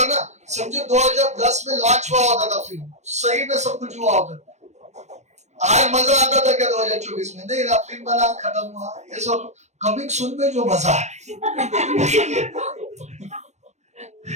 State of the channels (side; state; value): left; late; 0.33 ms